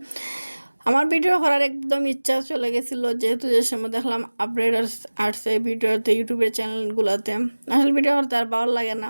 আমার ভিডিও করার একদম ইচ্ছা চলে গেছিলো, যেহেতু যে সময় দেখলাম আপডেট আসছে ভিডিওতে, ইউটিউবের চ্যানেলগুলোতে। আসলে ভিডিও করতে আর ভালো লাগে না।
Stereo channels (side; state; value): both; inverted; correlation -1.00